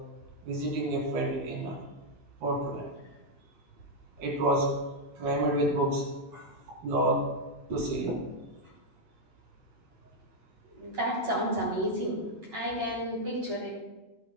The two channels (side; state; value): both; normal; correlation -0.01